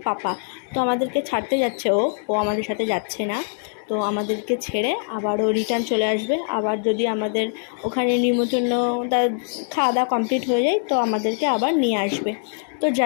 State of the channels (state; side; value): silent; right; digital silence